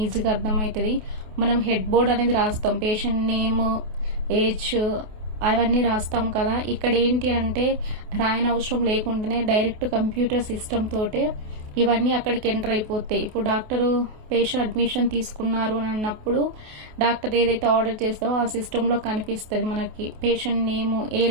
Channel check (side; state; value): left; late; 28 ms